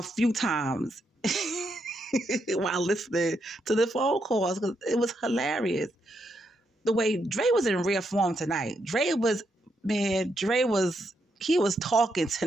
few times while listening to the phone calls because it was hilarious. The way Dre was in rare form tonight. He was talking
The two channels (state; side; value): normal; both; correlation 0.80